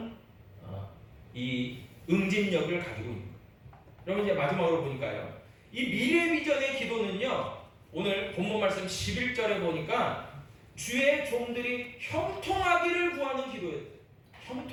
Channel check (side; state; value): both; identical; correlation 1.00